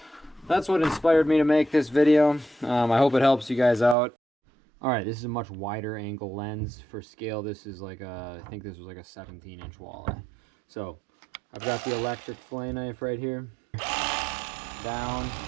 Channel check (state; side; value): drops out; left; at 4.0 s